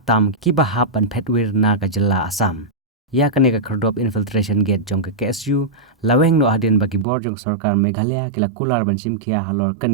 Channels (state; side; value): drops out; left; at 7.1 s